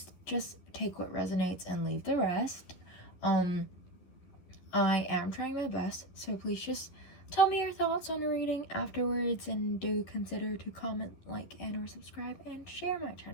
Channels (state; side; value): late; right; 11 ms